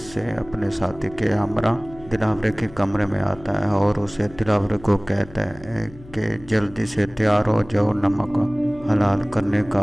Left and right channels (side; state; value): left; noise; hum, 20 dB below the sound